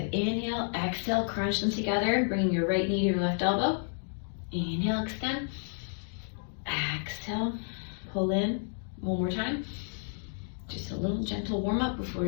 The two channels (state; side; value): silent; right; digital silence